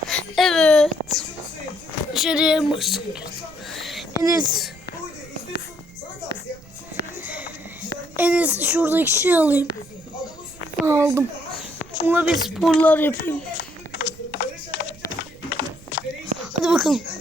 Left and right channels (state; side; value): noise; right; rumble, 22 dB below the sound